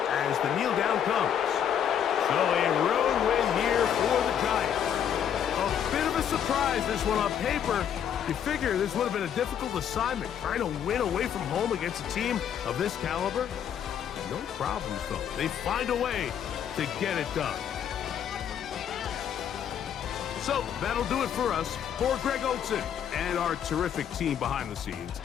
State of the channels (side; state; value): right; quieter; 9.0 dB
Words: as the kneel down comes. So a road win here for the Giants. A bit of a surprise, this one on paper. You figure this would have been a difficult assignment, trying to win away from home against a team of this caliber. No problems, though. They find a way to get it done. So that'll do it for us. For Greg Olsen and our terrific team behind the scenes,